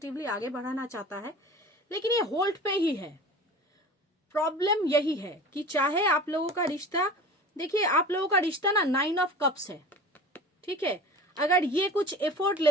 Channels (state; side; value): normal; both; correlation 0.37